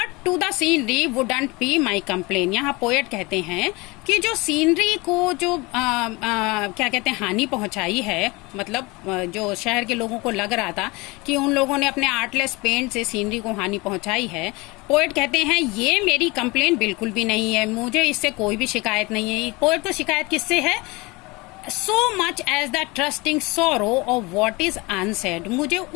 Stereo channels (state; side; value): quieter; right; 24.5 dB